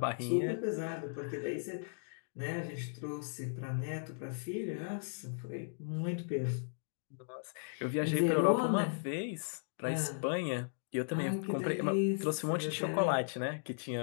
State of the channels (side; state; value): right; silent; digital silence